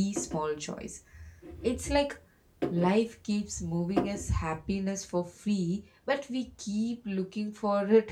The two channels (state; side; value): identical; both; correlation 1.00